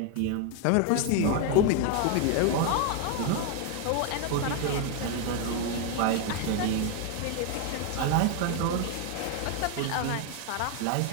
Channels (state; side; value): different; both; correlation 0.01